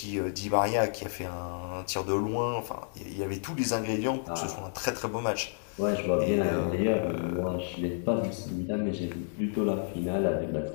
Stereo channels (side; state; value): right; silent; digital silence